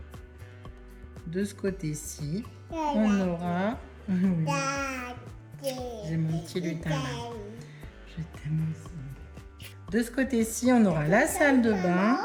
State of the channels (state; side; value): identical; both; correlation 1.00